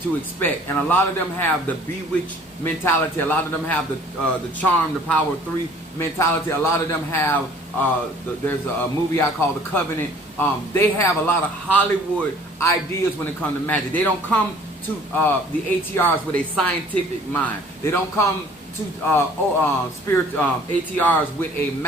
expect, and a lot of them have the bewitched mentality. A lot of them have the charm, the power of three mentality. A lot of them have there's a movie I call The Covenant. They have a lot of Hollywood ideas when it comes to magic. They don't come to the ATRs with a scientific mind. They don't come to ATRs with a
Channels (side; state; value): both; normal; correlation 0.53